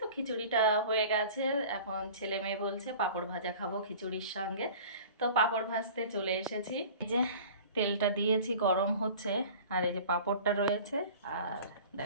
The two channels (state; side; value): inverted; both; correlation -0.42